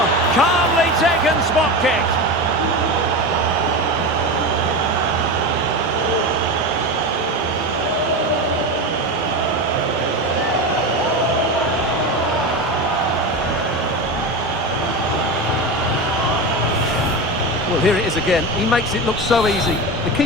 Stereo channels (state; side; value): normal; both; correlation 0.22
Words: Calmly taken spot kick. Well, here it is again. He makes it look so easy. The